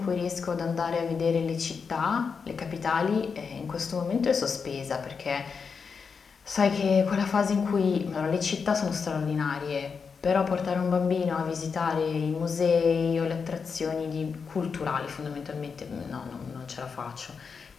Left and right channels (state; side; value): quieter; right; 5.6 dB